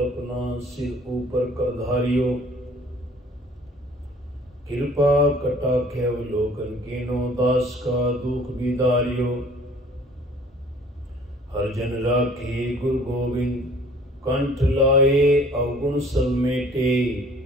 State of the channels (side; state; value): both; normal; correlation 0.52